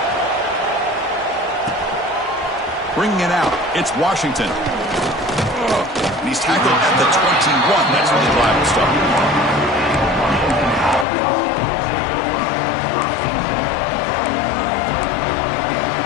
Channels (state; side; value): drops out; right; at 11.1 s